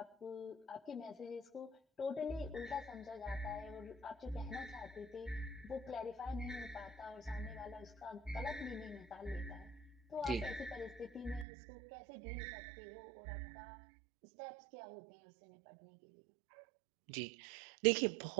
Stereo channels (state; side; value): drops out; left; at 11.5 s